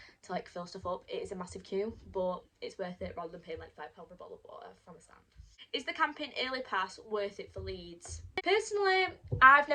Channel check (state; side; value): identical; both; correlation 1.00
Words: to like fill stuff up. It is a massive queue, but it's worth it rather than paying like £5 for a bottle of water from a stand. Is the camping early pass worth it for Leeds? Personally, I've